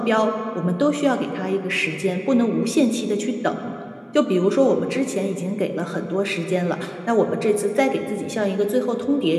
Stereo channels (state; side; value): identical; both; correlation 1.00